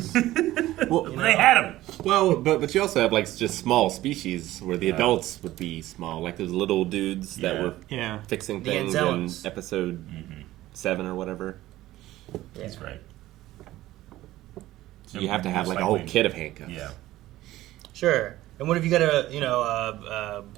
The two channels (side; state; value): left; quieter; 15.7 dB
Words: Well, They had them. well, but you also have like just small species where the adults would be small, like those little dudes that Yeah. were Yeah. fixing The things in Anzellans. episode 7 or whatever. Yeah. That's right. So you have to have Most like a whole likely- kit of handcuffs. Yeah. Sure. And what if you got